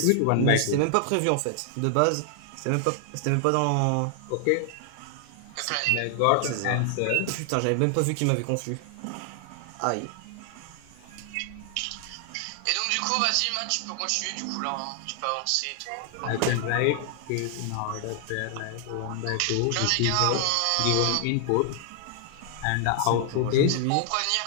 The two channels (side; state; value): both; different; correlation 0.00